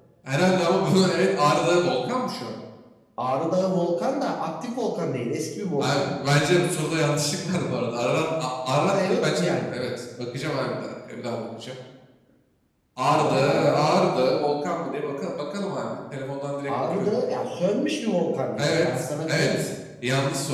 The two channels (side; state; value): both; identical; correlation 1.00